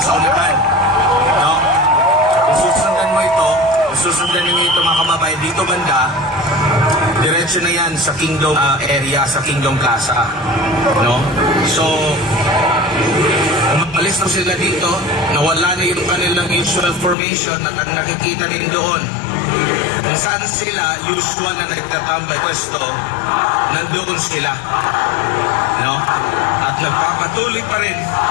sa unahan, no? Kung susundan mo ito, susundan niyo ito mga kababayan dito banda, diretso na yan sa Kingdom area, sa Kingdom Plaza, no? So umalis na sila dito, nawala na yung kanilang usual formation at ang nakikita rin doon kung saan sila usual na nagtatambay pwesto, nandoon sila, no? At nagpapatuloy pa rin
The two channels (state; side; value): drops out; right; at 17.2 s